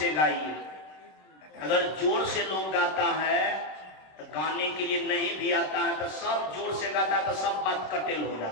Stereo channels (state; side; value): late; right; 26 ms